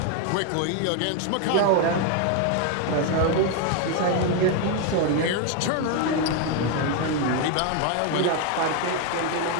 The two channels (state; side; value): different; both; correlation 0.01